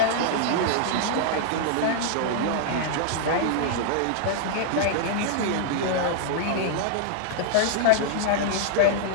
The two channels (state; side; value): different; both; correlation -0.01